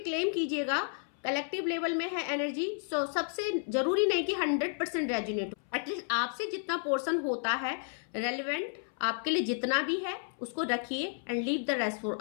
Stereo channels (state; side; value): silent; right; 56 dB below the other